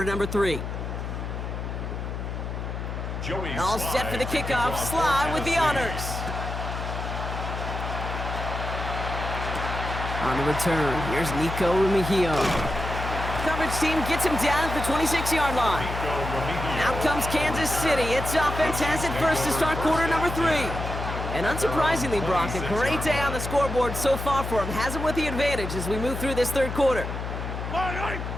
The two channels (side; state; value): left; noise; hum, 5 dB below the sound